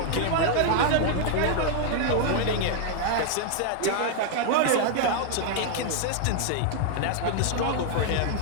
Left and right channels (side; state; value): both; different; correlation 0.00